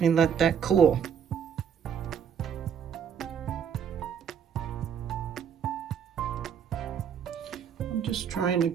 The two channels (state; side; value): quieter; left; 7.8 dB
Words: me let that cool. I'm just trying to